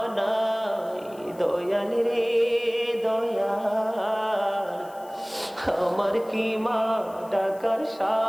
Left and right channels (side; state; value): left; noise; hiss, 25 dB below the sound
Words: নাই দয়াল রে দয়াল আমার কি মা ডাকার